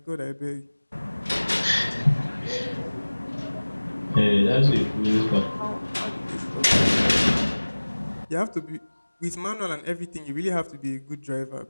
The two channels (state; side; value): inverted; both; correlation -1.00